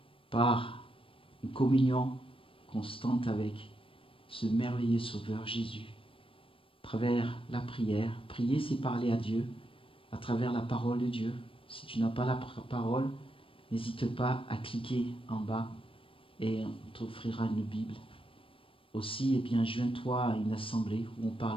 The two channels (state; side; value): late; right; 0.26 ms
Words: par une communion constante avec ce merveilleux Sauveur Jésus. À travers la prière, prier c'est parler à Dieu, à travers la parole de Dieu. Si tu n'as pas la parole, n'hésite pas à cliquer en bas et on t'offrira une Bible. Aussi, joins-toi à une assemblée où on